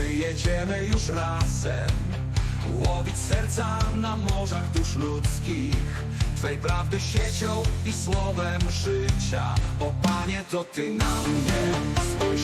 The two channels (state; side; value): identical; both; correlation 1.00